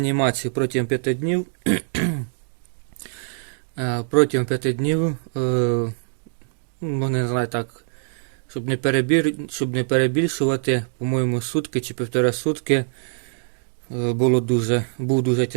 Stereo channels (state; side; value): silent; left; digital silence